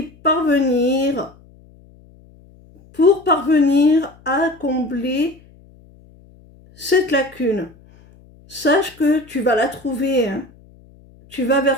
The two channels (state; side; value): noise; left; hum, 26 dB below the sound